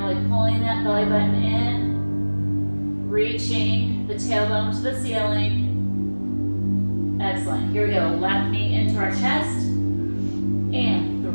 really pulling that belly button in. Reaching the tailbone to the ceiling. Excellent. Here we go. Left knee into our chest. And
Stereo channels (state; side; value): inverted; both; correlation -1.00